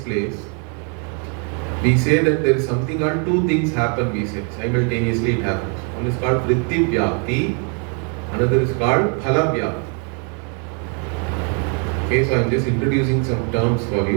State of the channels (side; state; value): left; quieter; 39.2 dB